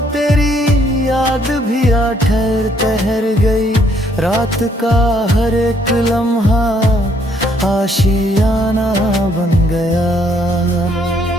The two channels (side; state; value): both; normal; correlation 0.68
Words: तेरी याद भी आ ठहर ठहर गई, रात का हर एक लम्हा आशियाना बन गया।